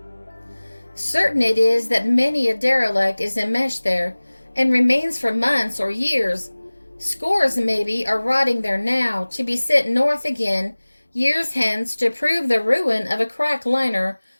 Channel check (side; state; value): both; inverted; correlation -1.00